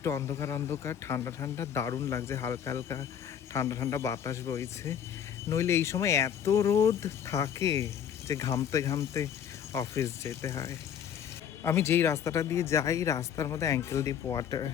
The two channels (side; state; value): right; quieter; 8.8 dB